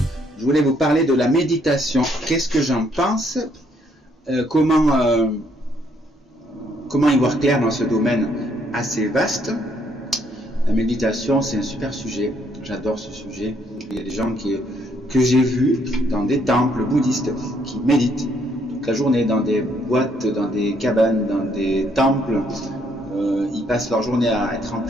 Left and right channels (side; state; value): both; normal; correlation 0.69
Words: Je voulais vous parler de la méditation. Qu'est-ce que j'en pense? Comment y voir clair dans ce domaine assez vaste? La méditation, c'est un super sujet. J'adore ce sujet. Il y a des gens que j'ai vus dans des temples bouddhistes qui méditent toute la journée dans des boîtes, dans des cabanes, dans des temples. Ils passent leur journée à être en